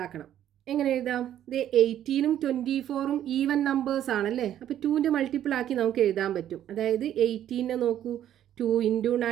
എങ്ങനെ എഴുതാം, 18ഉം 24ഉം ഈവൻ നമ്പേഴ്സ് ആണല്ലേ. അപ്പോൾ 2ൻ്റെ മൾട്ടിപ്പിൾ ആക്കി നമുക്ക് എഴുതാൻ പറ്റും. അതായത് 18നെ നോക്കൂ, 2 ×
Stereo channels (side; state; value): left; quieter; 11.2 dB